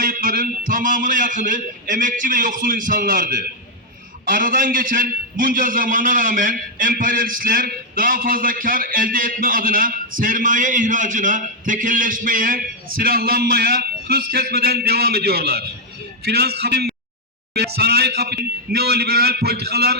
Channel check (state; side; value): normal; both; correlation -0.01